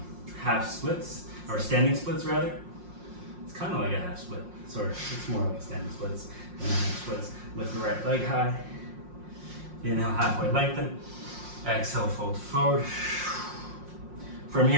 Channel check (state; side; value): late; left; 5.6 ms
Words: half splits, or standing splits rather. It's kind of like a half split, sort of. It's more like standing splits than half splits. Lift the right leg high. Inhale, halfway lengthen. Exhale, fold forward. From